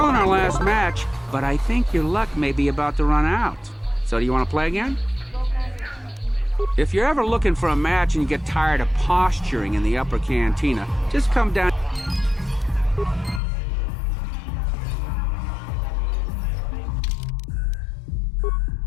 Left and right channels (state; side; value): drops out; right; at 13.4 s